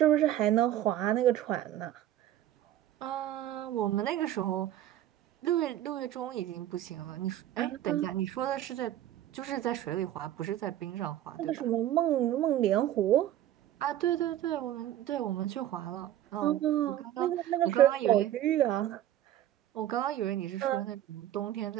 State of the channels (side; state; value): left; quieter; 12.4 dB